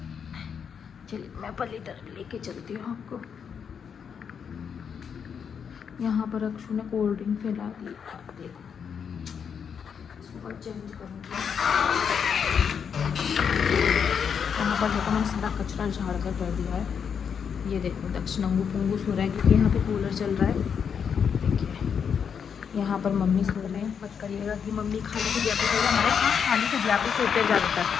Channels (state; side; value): quieter; right; 7.1 dB